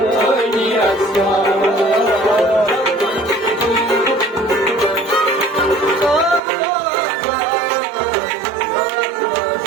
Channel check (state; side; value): drops out; left; at 6.4 s